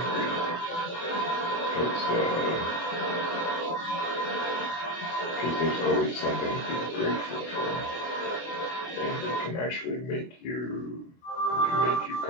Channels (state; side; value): late; right; 24 ms